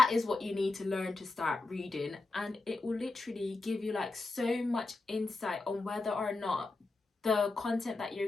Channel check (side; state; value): right; quieter; 3.4 dB